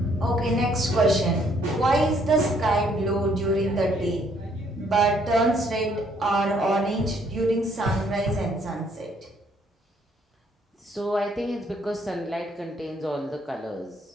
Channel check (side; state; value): both; normal; correlation 0.66